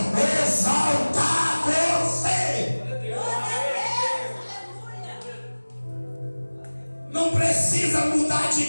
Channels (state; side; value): inverted; both; correlation -1.00